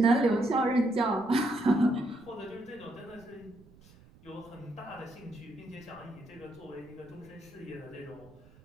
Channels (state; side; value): noise; right; rumble, 25 dB below the sound